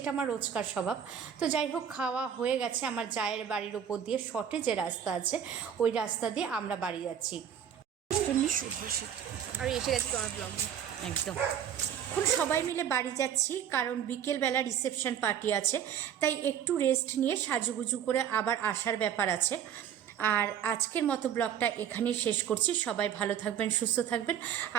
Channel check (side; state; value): left; quieter; 9.0 dB